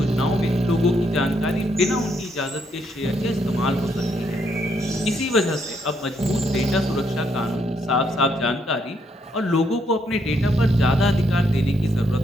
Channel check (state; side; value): normal; both; correlation 0.74